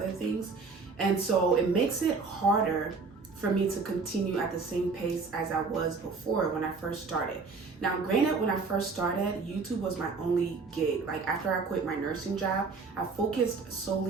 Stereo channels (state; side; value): quieter; left; 4.5 dB